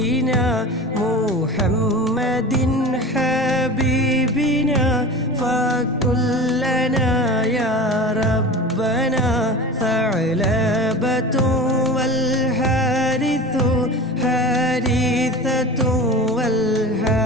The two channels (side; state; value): both; normal; correlation 0.33